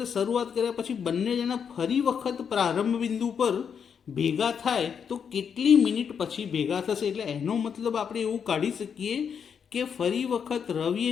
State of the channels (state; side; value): quieter; right; 7.1 dB